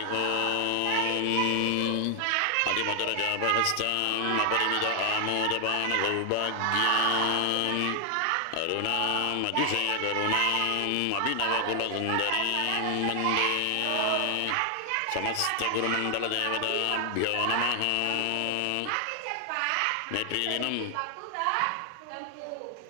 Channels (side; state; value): both; different; correlation 0.00